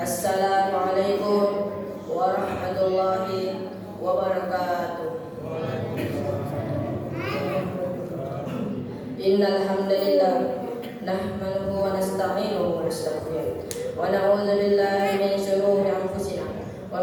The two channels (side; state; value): both; identical; correlation 1.00